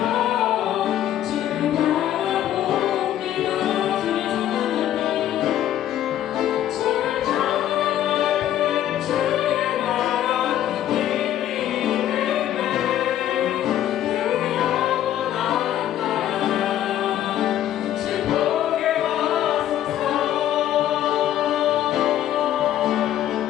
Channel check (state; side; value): quieter; right; 11.9 dB